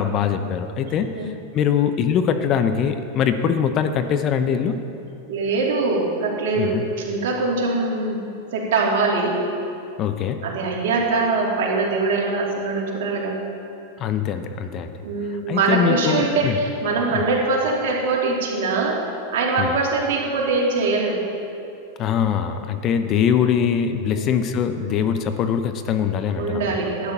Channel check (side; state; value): both; normal; correlation 0.09